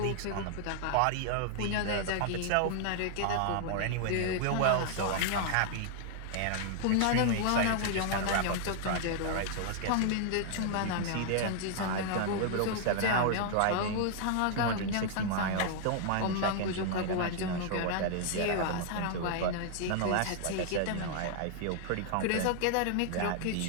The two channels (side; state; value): both; different; correlation -0.01